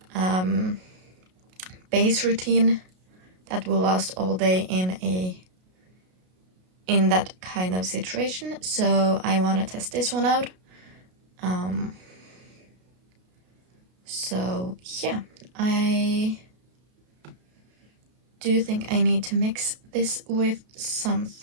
base routine that will last all day in that kind of situation. So I want to test this one out. So yeah, I do think I need to mix this with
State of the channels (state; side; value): late; left; 33 ms